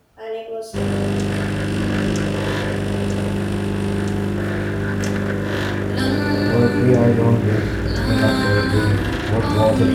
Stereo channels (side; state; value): both; identical; correlation 1.00